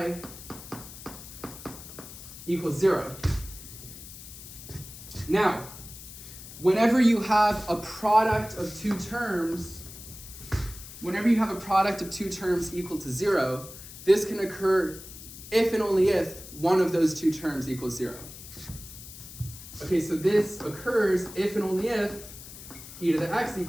equals 0. Now, whenever you have a product of two terms, equal to 0, this can occur if and only if one of those two terms equals 0. Okay, so this occurs if and only if e to the x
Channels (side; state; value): left; noise; hiss, 14 dB below the sound